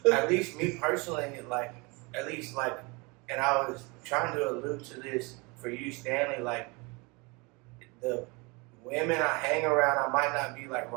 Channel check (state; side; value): quieter; left; 27.8 dB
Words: At least me personally, like at least like, and I was trying to allude to this for you, Stanley. Like the women I hang around, I might not be like